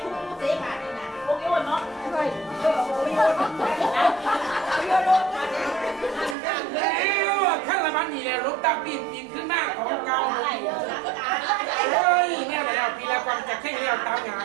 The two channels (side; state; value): left; drops out; at 6.4 s